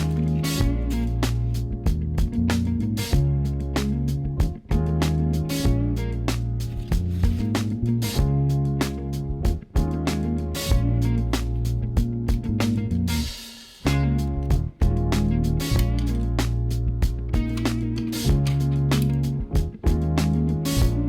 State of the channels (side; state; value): both; identical; correlation 1.00